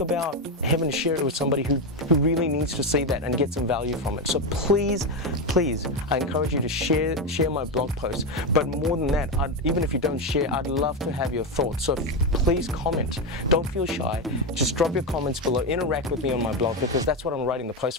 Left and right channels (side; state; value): both; normal; correlation 0.11